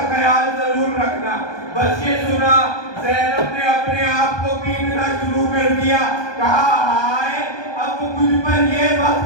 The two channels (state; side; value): late; right; 1.2 ms